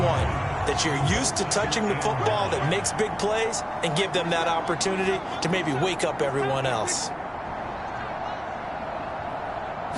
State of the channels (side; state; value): both; identical; correlation 1.00